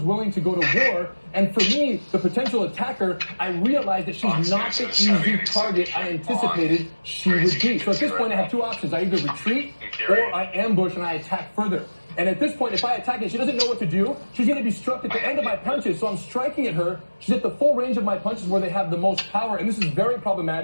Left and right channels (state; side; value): inverted; both; correlation -1.00